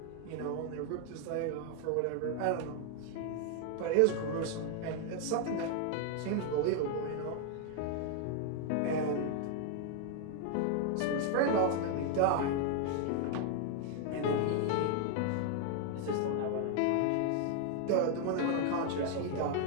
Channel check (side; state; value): both; different; correlation 0.00